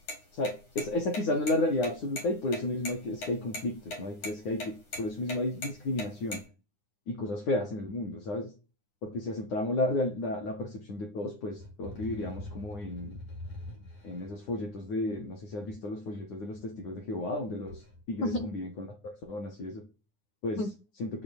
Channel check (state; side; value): late; right; 9.7 ms